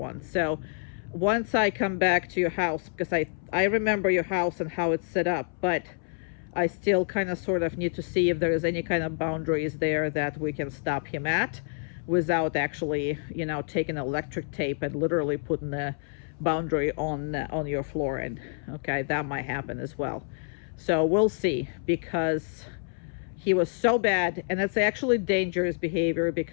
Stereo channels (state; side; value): silent; right; 59 dB below the other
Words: So once I come back to your house, because I remember your house and how it's set up, but I still kind of sort of need to see if there is any kind of boundaries there that we can stop him at without actually, you know, taking electric tape and literally putting the boundary on your flooring. Okay, that might happen as well. So we'll see, because he was so bad, and it's actually dangerous behavior